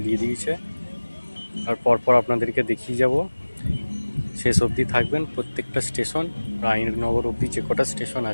দিয়ে দিয়েছে। আর পরপর আপনাদেরকে দেখিয়ে যাব। শেষ অবধি থাকবেন। প্রত্যেকটা স্টেশন রায়নগর অবধি যে কটা স্টেশন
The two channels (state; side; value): inverted; both; correlation -1.00